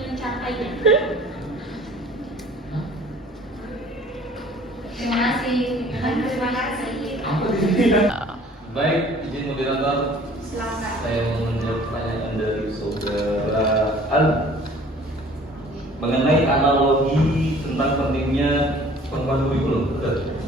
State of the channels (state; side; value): normal; both; correlation 0.51